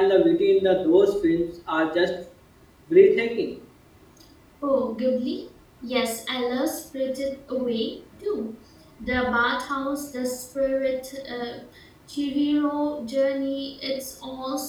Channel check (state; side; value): identical; both; correlation 1.00